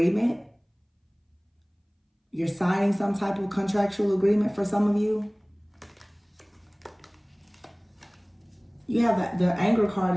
You're signing some type of contractual agreement for some of you. You have the anger card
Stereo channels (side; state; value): both; identical; correlation 1.00